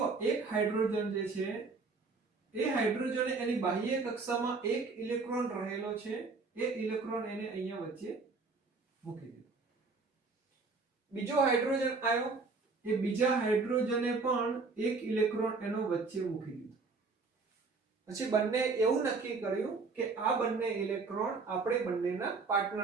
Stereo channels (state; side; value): quieter; left; 4.2 dB